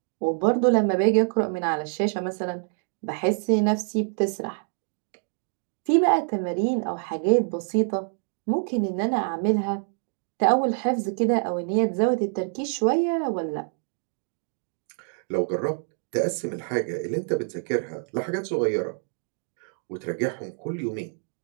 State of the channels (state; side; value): silent; left; digital silence